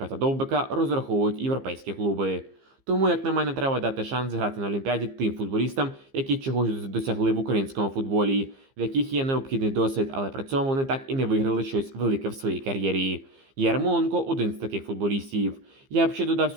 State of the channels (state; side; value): late; left; 15 ms